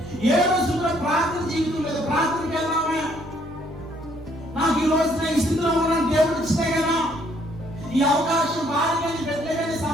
ఏ రోజు కూడా ప్రార్థన జీవితం లేదు. ప్రార్థనకి వెళ్దామే, నాకు ఈ రోజు నేను ఈ స్థితిలో ఉన్నాను, దేవుడు ఇచ్చితే కదా ఈ అవకాశం, భార్య కానీ బిడ్డ కానీ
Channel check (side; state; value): both; normal; correlation 0.66